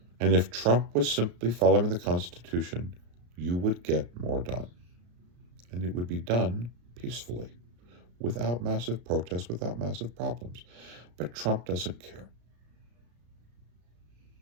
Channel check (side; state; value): left; late; 34 ms